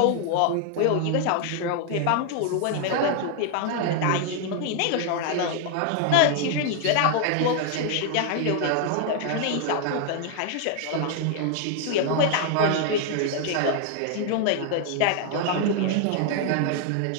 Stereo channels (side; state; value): both; different; correlation 0.00